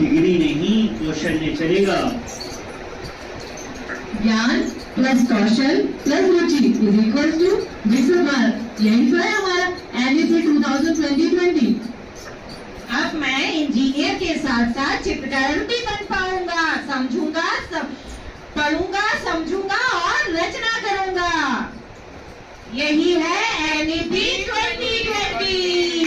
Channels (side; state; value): both; identical; correlation 1.00